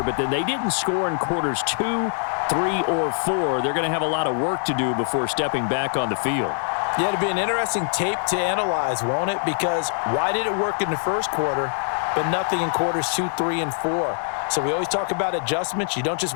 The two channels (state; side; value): silent; right; 63 dB below the other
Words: but then they didn't score in quarters 2, 3, or 4. They're going to have a lot of work to do before stepping back on the field. Yeah, it'll be an interesting tape to analyze, won't it? Because why did it work in the first quarter, but nothing in quarters 2, 3, and 4? So we always talk about adjustments. You don't just